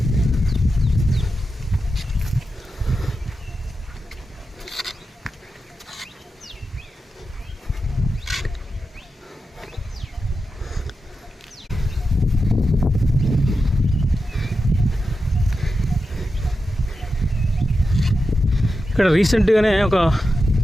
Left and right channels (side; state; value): both; normal; correlation 0.90